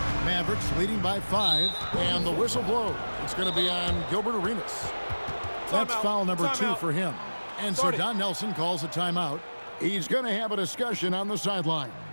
Mavericks leading by 5, and the whistle blows. It's going to be on Gilbert Arenas. That's foul number 2 for him. And so Don Nelson calls a timeout. He's going to have a discussion on the sideline.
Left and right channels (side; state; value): both; inverted; correlation -1.00